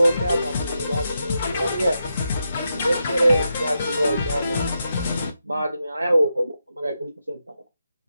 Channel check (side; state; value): both; inverted; correlation -0.85